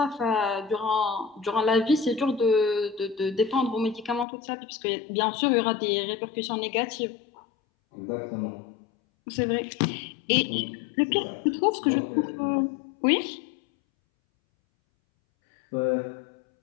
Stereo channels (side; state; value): right; drops out; at 4.2 s